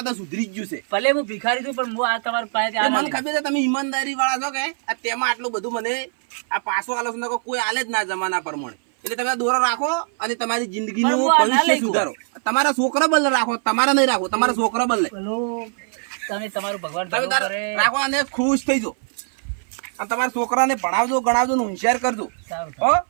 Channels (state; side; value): silent; left; 57 dB below the other